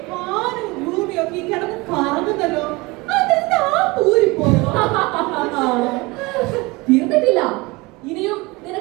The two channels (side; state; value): left; quieter; 23.9 dB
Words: വാനും ഭൂമിയൊക്കെ ഈ കിടന്ന് കറങ്ങുന്നല്ലോ. അതെന്താ പൂരിപ്പോ? തീർന്നിട്ടില്ല. ഇനിയും